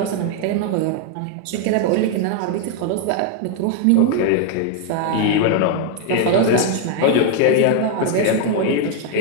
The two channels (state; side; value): different; both; correlation 0.00